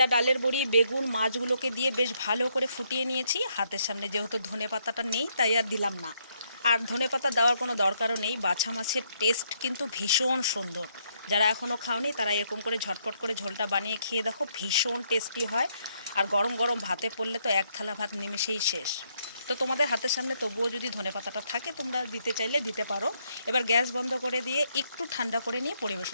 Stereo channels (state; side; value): inverted; both; correlation -0.73